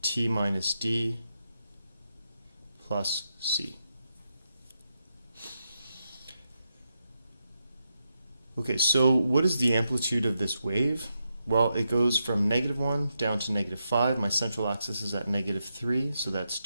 T minus D plus C. Okay, so what is the amplitude of this wave? Well, it goes from -1 down to -5. My central axis is at -3, so that's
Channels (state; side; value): inverted; both; correlation -0.84